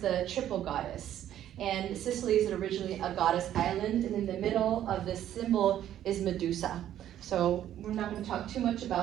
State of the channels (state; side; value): quieter; left; 11.5 dB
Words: triple goddess. And Sicily is originally a goddess island, and in the middle of this symbol is Medusa. So we're not going to talk too much